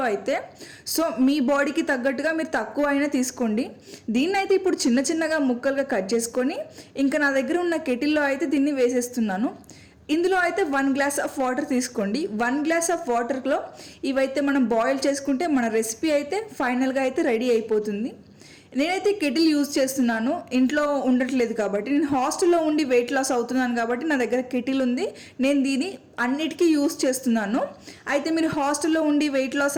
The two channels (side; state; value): both; identical; correlation 1.00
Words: అయితే. సో మీ బాడీకి తగ్గట్టుగా మీరు తక్కువ అయినా తీసుకోండి. దీన్ని అయితే ఇప్పుడు చిన్న చిన్నగా ముక్కలుగా కట్ చేసుకొని ఇంకా నా దగ్గర ఉన్న కెటిల్లో అయితే దీన్ని వేసేస్తున్నాను. ఇందులో అయితే 1 గ్లాస్ ఆఫ్ వాటర్ తీసుకోండి. 1 గ్లాస్ ఆఫ్ వాటర్లో ఇవైతే మనం బాయిల్ చేసుకుంటే మన రెసిపీ అయితే ఫైనల్గా అయితే రెడీ అయిపోతుంది. నేనైతే కెటిల్ యూజ్ చేస్తున్నాను, ఇంట్లో ఉండట్లేదు కాబట్టి. నేను హాస్టల్లో ఉండి వెయిట్ లాస్ అవుతున్నాను కాబట్టి నా దగ్గర కెటిల్ ఉంది. నేను దీన్ని అన్నిటికీ యూజ్ చేస్తున్నాను. అయితే మీరు హాస్టల్లో ఉండి వెయిట్